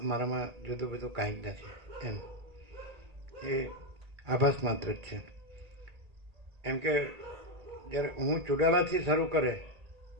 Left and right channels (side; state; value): left; late; 1.8 ms